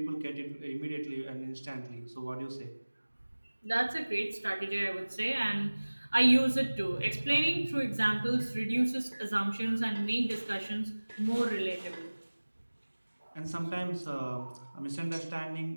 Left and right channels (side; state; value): both; inverted; correlation -1.00